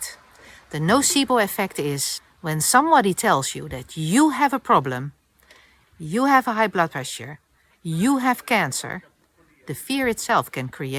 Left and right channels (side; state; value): both; identical; correlation 1.00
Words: The nocebo effect is when somebody tells you that you have a problem, you have a high blood pressure, you have cancer, the fear itself can